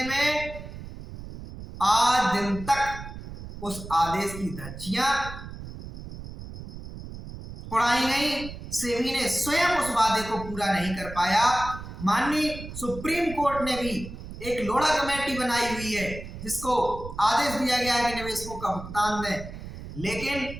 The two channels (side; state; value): right; noise; rumble, 11 dB below the sound